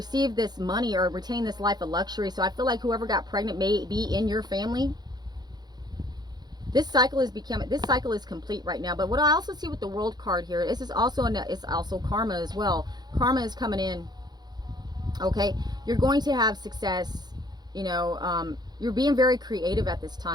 this money or retain this life of luxury. So I feel like whoever got pregnant may be in your family. This cycle is complete right now. But what I also see with the World card here, this is also it's also karma as well. Karma is coming in. Okay, you're going to have success. You know, you're being very creative at this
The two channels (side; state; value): left; late; 0.20 ms